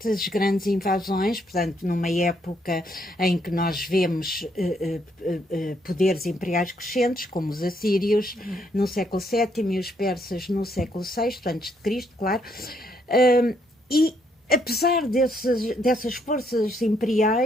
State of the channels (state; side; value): normal; both; correlation 0.72